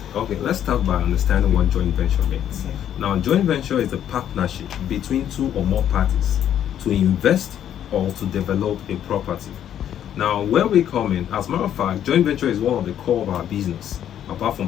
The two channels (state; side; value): quieter; right; 10.3 dB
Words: Okay, let's start by understanding what joint venture means. Okay. Now, joint venture is a partnership between two or more parties to invest or to develop a property. Now, where we come in, as a matter of fact, joint venture is one of the core of our business. Apart from